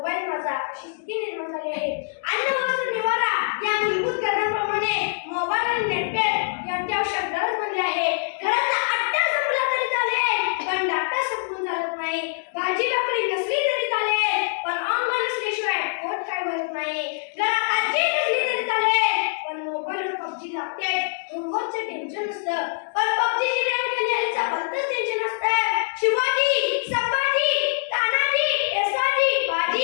माझा, अशी स्थिती निर्माण झाली आहे. अन्न वस्त्र निवारा या मूलभूत गरजांप्रमाणे मोबाईल आणि नेटपॅक यांची आवश्यक गरज बनली आहे. घरातला आट्टा संपला तरी चालेल पण डाटा संपून चालत नाही. भाजी भाकरी नसली तरी चालेल पण ऑनलाईन असल्याशिवाय पोट काय भरत नाही. घरात आजी नसली तरी चालेल पण मोबाईलवर पबजी लागते. होमवर्कचं टेन्शन नसतं पण पबजीची रँक खेळण्याचा भलतंच टेन्शन असतं. शिवाजी, संभाजी, तानाजी, येसाजी,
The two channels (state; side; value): silent; right; digital silence